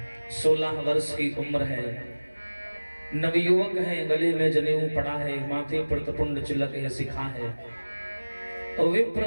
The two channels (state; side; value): inverted; both; correlation -1.00